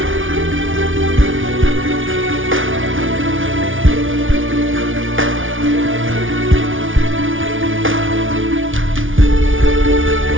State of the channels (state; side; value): late; left; 0.57 ms